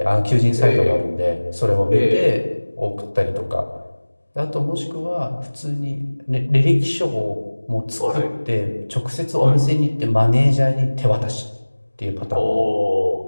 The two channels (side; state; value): both; inverted; correlation -1.00